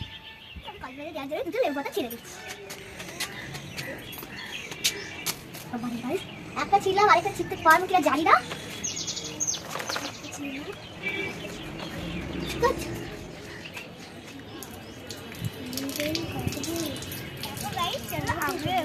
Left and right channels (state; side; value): identical; both; correlation 1.00